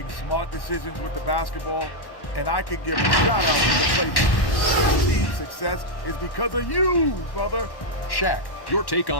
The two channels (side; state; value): right; late; 1.1 ms